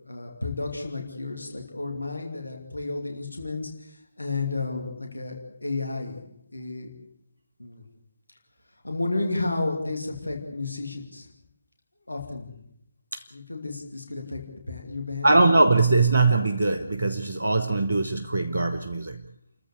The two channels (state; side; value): inverted; both; correlation -0.84